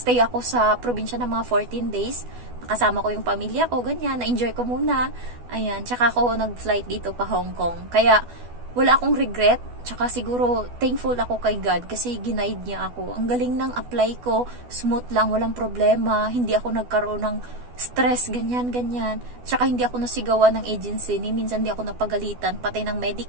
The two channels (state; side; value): late; left; 12 ms